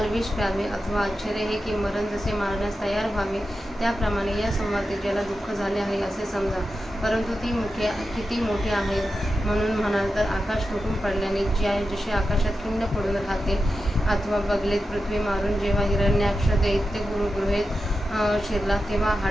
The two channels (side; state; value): both; normal; correlation 0.90